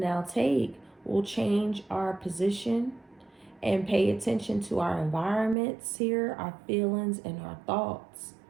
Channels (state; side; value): drops out; left; at 5.6 s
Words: take will change our position and pay attention to our environments here, our feelings, and our thoughts.